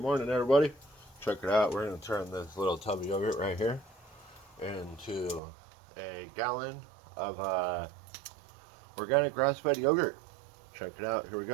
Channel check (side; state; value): left; drops out; at 5.4 s